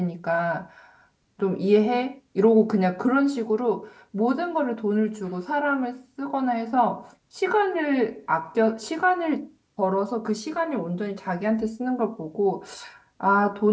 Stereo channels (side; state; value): both; identical; correlation 1.00